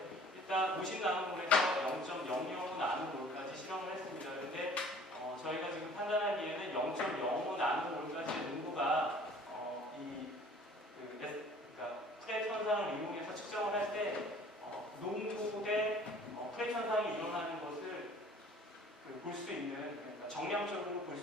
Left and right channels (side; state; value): both; normal; correlation 0.51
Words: 일단 50나노몰에서 0.00 나노몰까지 실험을 했습니다. 그런데 저희가 지금 판단하기에는 0.05 나노몰까지의 농도가 그러니까 프렛 현상을 이용해서 측정을 할 때 농도 대 프렛 현상이 일어나는 것을 볼 수 있는, 그러니까 정량적으로 볼